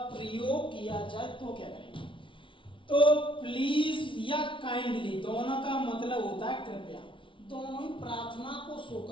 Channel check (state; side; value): late; right; 0.25 ms